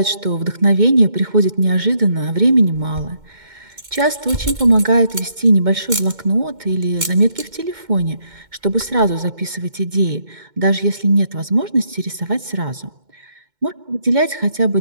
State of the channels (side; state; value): left; late; 2.1 ms